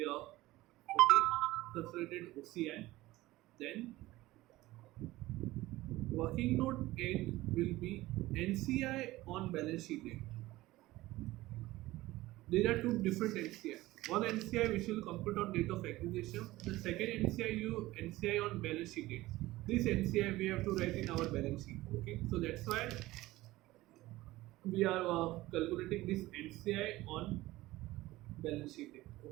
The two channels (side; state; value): left; quieter; 17.9 dB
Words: are okay. Consolidated OCI. Then working note 8 will be NCI on balance sheet date. There are two different NCI. One NCI which will compute on date of acquisition. The second NCI on balance sheet date. This NCI we have to write in our balance sheet. Okay, so that's why we are calculating this NCI on balance sheet date.